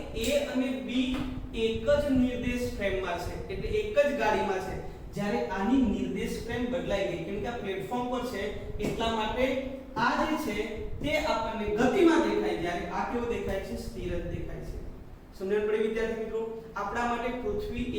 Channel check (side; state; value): both; identical; correlation 1.00